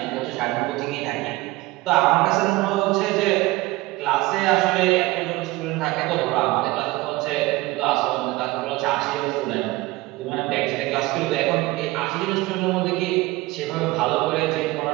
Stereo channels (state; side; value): quieter; left; 20.2 dB